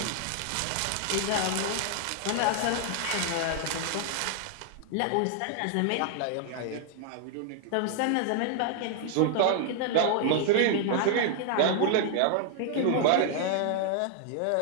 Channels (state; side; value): different; both; correlation 0.00